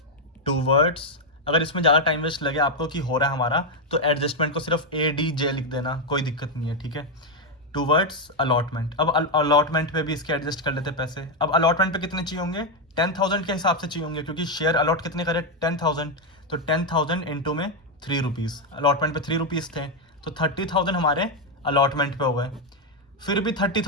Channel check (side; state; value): both; normal; correlation 0.03